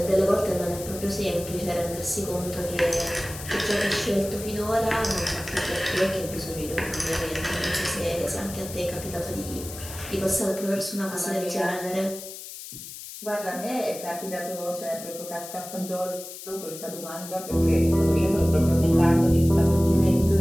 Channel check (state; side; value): noise; left; hiss, 12 dB below the sound